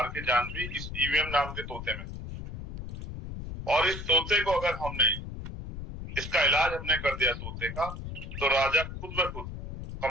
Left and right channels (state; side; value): noise; left; rumble, 8 dB below the sound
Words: की जान भी इस ईवीएम नाम के तोते में। और इस तोते को अगर हमने, इसका इलाज हमने कर दिया तोते का, तो राजा खुद ब खुद